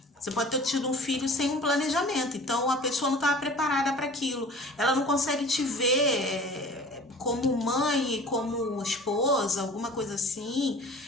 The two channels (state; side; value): normal; both; correlation 0.44